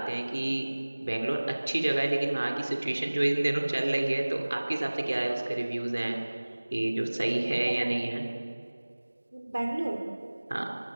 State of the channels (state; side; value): inverted; both; correlation -1.00